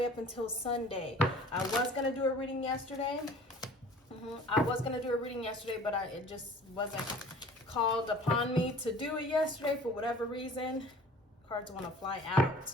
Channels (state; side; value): normal; both; correlation 0.47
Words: up until Sunday. I was going to do a reading yesterday. But it just wasn't called upon me to do it yesterday for whatever reason. Cards want to fly out.